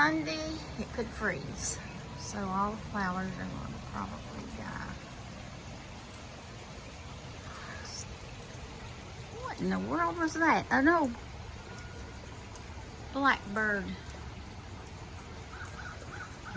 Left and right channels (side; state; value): both; identical; correlation 1.00